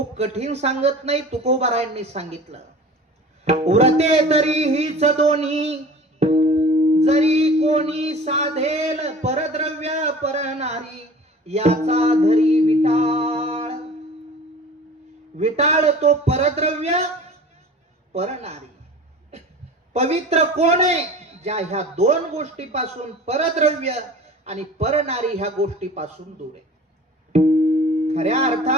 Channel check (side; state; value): both; normal; correlation 0.41